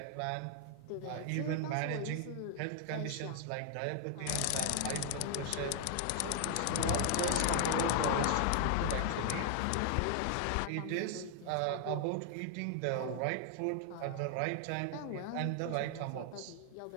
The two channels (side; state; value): both; different; correlation 0.00